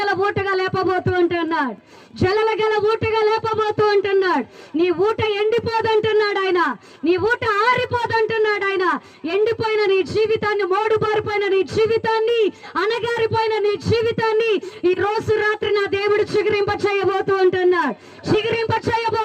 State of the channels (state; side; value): identical; both; correlation 1.00